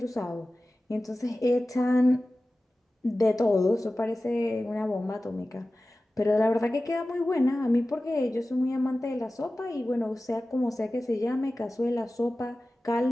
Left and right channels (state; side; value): normal; both; correlation 0.96